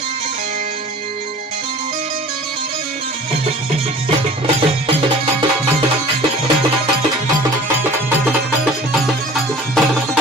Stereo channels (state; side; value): normal; both; correlation 0.45